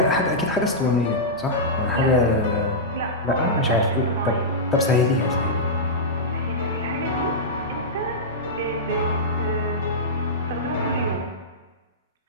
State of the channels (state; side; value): normal; both; correlation -0.12